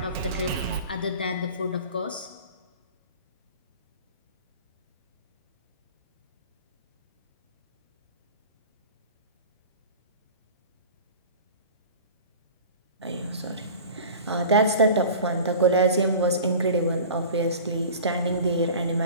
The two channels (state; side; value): inverted; both; correlation -0.38